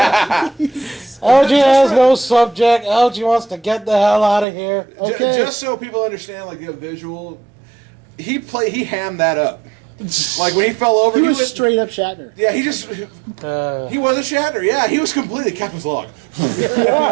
LG has no subject. LG wants to get the hell out of here. Okay. Just so people understand, like the visual, he hammed that up. Like when he fell over, He was went- straight up Shatner. Yeah, he wasn't Shatner. Yeah, he was completely Captain's log.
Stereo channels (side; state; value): left; drops out; at 4.5 s